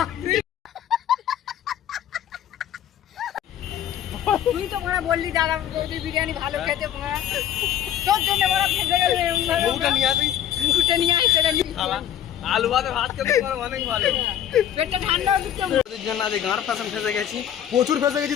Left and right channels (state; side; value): quieter; right; 10.6 dB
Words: তুই তো মনে বললি দাদা বৌদি বিরিয়ানি ভালো খেতে মনে তোর জন্য বড় খেতে গেলে বউটা নিয়ে আসি। মুখটা নিয়ে আসে রে আলু ভাতে ভাত খেতে পারো অনেক ভালো। পেটটা ঠান্ডা হয়ে দিচ্ছে ওদের জন্য আজ গাঁর পাশে ফেসে গেছি। প্রচুর ফেসে গেছি